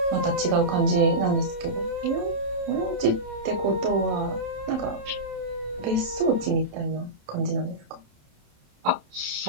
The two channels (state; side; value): late; left; 27 ms